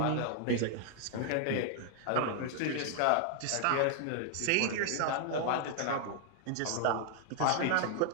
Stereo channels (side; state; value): both; different; correlation 0.00